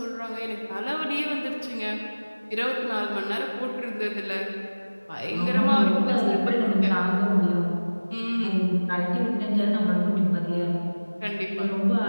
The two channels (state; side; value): inverted; both; correlation -1.00